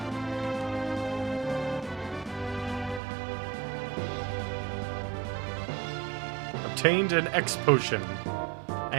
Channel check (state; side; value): drops out; left; at 3.0 s